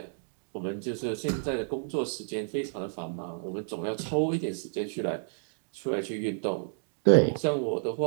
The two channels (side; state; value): left; silent; digital silence